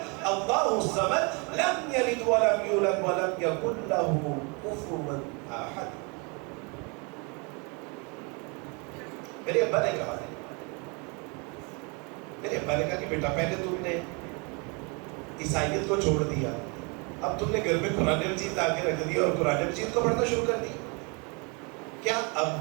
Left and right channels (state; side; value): quieter; left; 32.0 dB